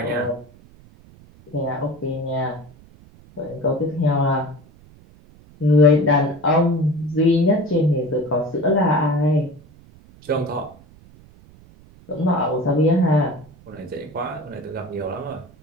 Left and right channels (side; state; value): right; noise; rumble, 25 dB below the sound